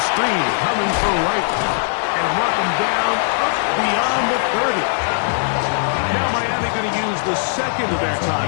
screen coming for right. And mark them down up beyond the 30. Now Miami going to use the 2nd of their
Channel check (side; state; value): right; silent; digital silence